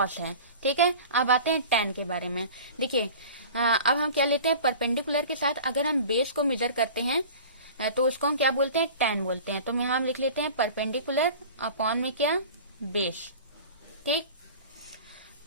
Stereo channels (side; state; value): both; inverted; correlation -0.40